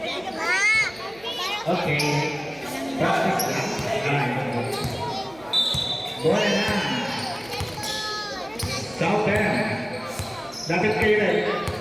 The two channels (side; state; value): right; noise; hum, 23 dB below the sound